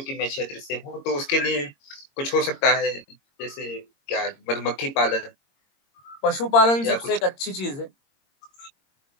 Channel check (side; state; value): right; late; 22 ms